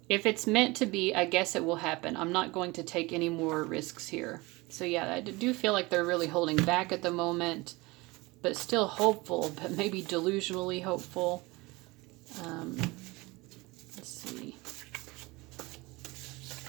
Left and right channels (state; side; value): quieter; left; 23.1 dB